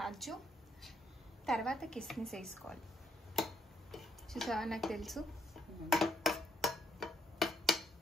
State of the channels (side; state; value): both; normal; correlation 0.73